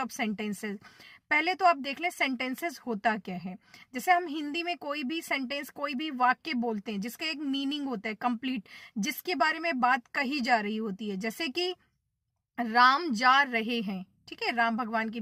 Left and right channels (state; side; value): identical; both; correlation 1.00